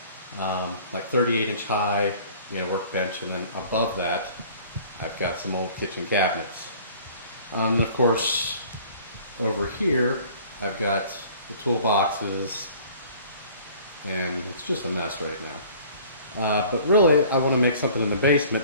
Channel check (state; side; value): inverted; both; correlation -0.50